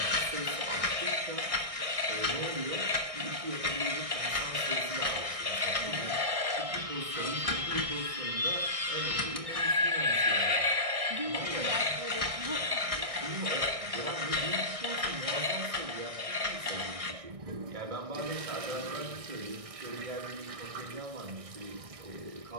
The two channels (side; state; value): left; late; 1.6 ms